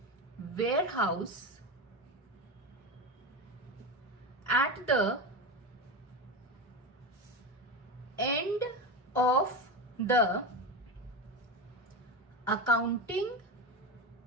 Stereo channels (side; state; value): both; normal; correlation 0.19